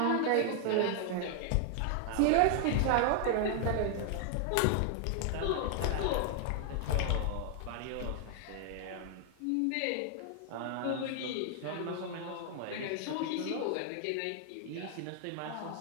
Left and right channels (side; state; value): both; different; correlation 0.00